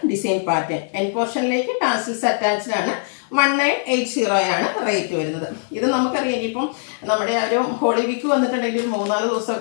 ഡിസൈൻ പാറ്റേൺ. എൻ പോർഷനിലേക്ക് ടാസിൽസ് അറ്റാച്ച്ഡ് ആണ്. 1980 ആണ് റേറ്റ് വരുന്നത്. ഇത് നമുക്കറിയാം ഇനിയിപ്പം നമ്മുടെ ആ ഒരു ഹോളി വീക്ക് വന്നിട്ടുണ്ടെങ്കിൽ 3-4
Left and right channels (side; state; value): right; silent; digital silence